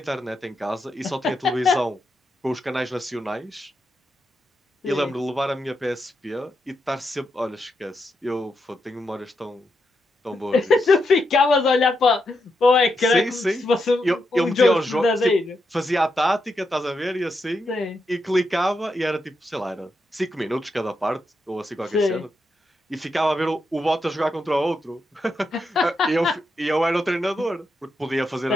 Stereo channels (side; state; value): both; normal; correlation 0.83